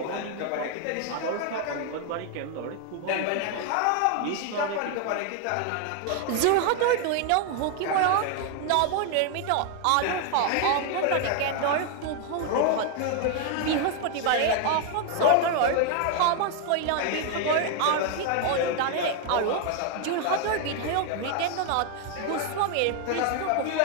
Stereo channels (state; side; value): different; both; correlation 0.00